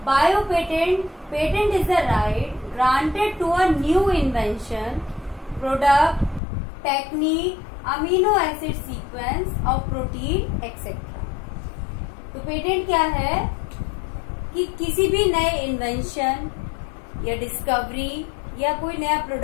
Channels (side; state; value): right; drops out; at 6.4 s